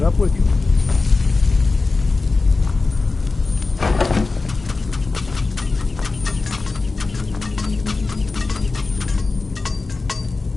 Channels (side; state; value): right; quieter; 3.8 dB